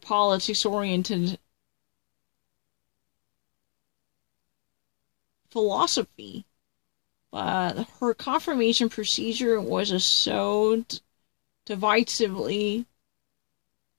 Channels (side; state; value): right; silent; 59 dB below the other